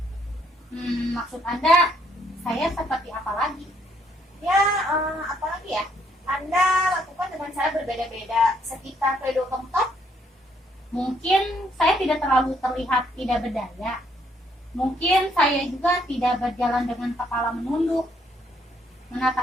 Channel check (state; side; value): normal; both; correlation 0.69